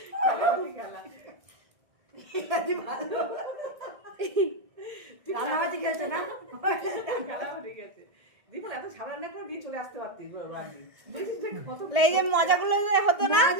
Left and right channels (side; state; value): left; late; 1.7 ms